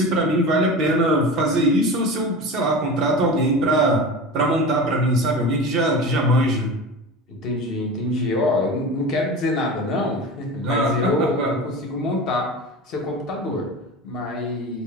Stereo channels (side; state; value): both; normal; correlation 0.31